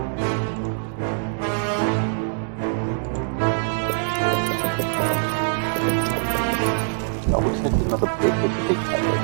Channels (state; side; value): silent; left; digital silence